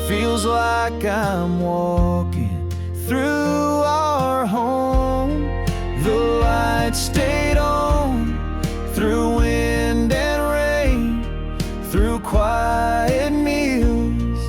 feels like I'm walking through our home. The light stayed on through wind and rain, through quiet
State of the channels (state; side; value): identical; both; correlation 1.00